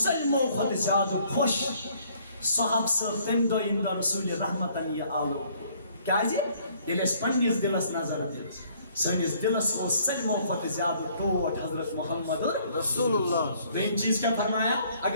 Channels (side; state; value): both; inverted; correlation -0.62